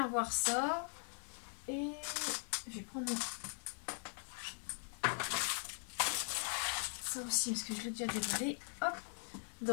voir ça et je vais prendre ça aussi parce que je l'ai déjà déballé. Hop,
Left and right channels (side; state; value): right; silent; 51 dB below the other